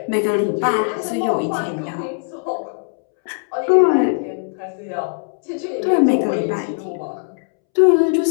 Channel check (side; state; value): right; silent; 66 dB below the other